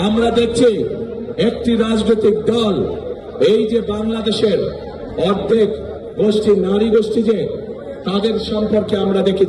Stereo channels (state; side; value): identical; both; correlation 1.00